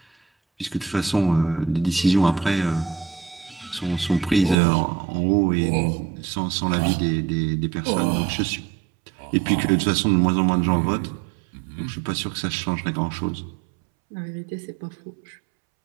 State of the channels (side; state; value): left; drops out; at 4.5 s